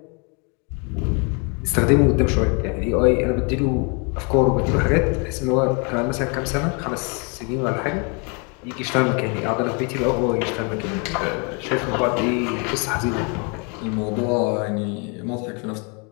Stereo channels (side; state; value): right; quieter; 34.3 dB